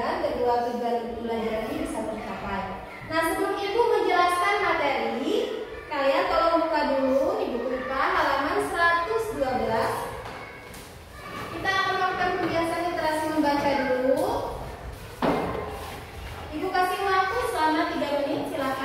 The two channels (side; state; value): both; identical; correlation 1.00